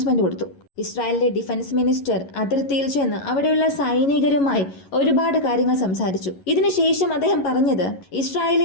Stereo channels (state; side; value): late; right; 11 ms